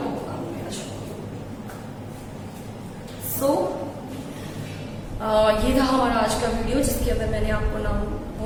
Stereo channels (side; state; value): both; identical; correlation 1.00